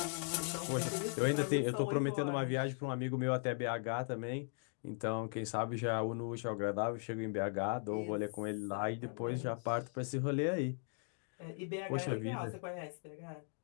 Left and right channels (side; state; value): right; silent; 52 dB below the other